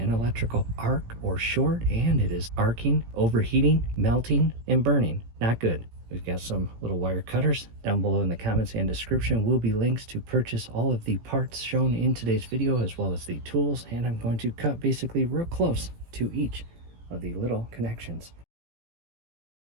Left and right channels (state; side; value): late; left; 18 ms